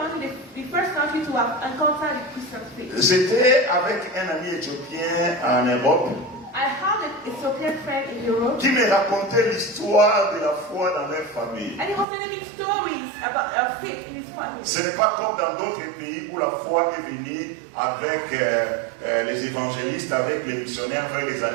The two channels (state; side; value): drops out; left; at 12.1 s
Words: the first country to have encountered the Christian faith. J'étais avec un ami éthiopien en Europe I have an Ethiopian friend in Europe, qui me racontait l'histoire de la foi dans leur famille. and he was telling me stories about faith in his family. Ce n'est pas comme dans d'autres pays où la foi est venue avec les évangélistes, avec les missionnaires vers les